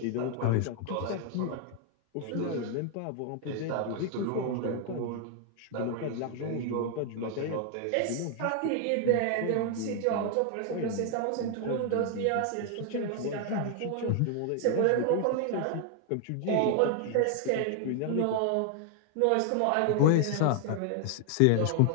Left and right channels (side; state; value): both; different; correlation 0.00